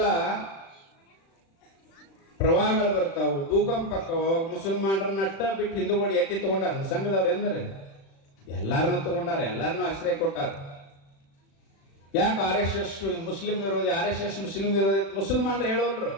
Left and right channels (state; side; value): late; right; 36 ms